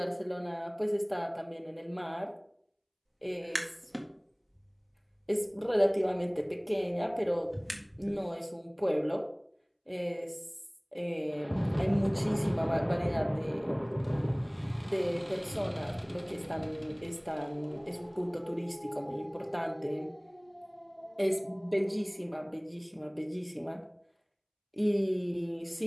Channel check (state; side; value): identical; both; correlation 1.00